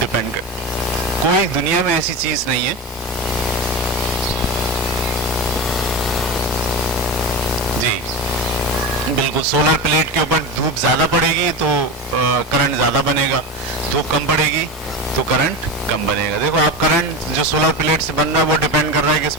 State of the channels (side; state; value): both; normal; correlation 0.23